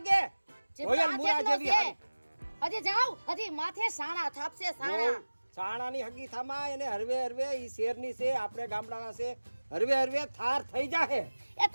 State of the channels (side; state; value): both; inverted; correlation -1.00